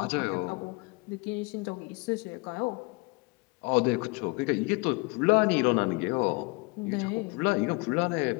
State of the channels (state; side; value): quieter; right; 27.4 dB